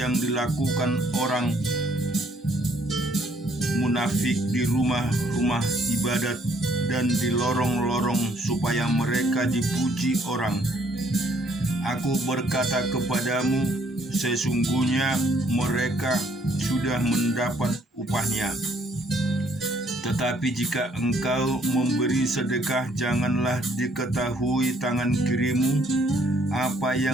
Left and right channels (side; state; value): both; normal; correlation 0.65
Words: dilakukan orang munafik di rumah-rumah ibadat dan di lorong-lorong supaya mereka dipuji orang. Aku berkata kepadamu, sesungguhnya mereka sudah mendapat upahnya. Tetapi jika engkau memberi sedekah, janganlah diketahui tangan kirimu apa